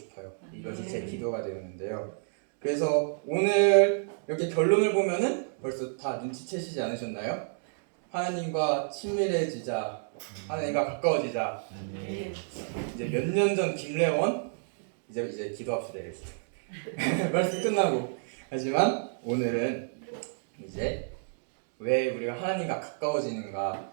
이것이 제 기도가 되었는데요. 그래서 오늘 이렇게 결론을 보면은 벌써 다 눈치채시지 않으셨나요? 하나님과 친밀해지자, 하나님과 가까워지자. 이제 몇 년 전 김래원 이제 기도합시다 이랬어요. 말씀 끝나고. 하지만 오늘은 이제 왜 우리가 하나님과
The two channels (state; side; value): silent; left; digital silence